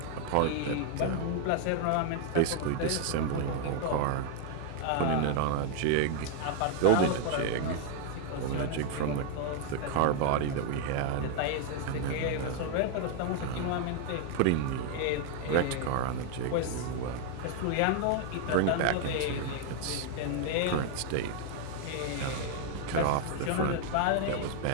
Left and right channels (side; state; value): both; different; correlation 0.00